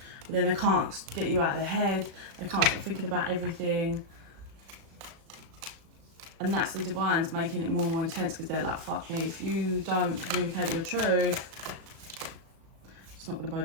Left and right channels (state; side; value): late; left; 36 ms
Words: But then they can't get you out of their head. They can't stop thinking about everything. And that's the divines making it more and more intense, because they're like, fuck me, if you don't communicate your truth, it's not going to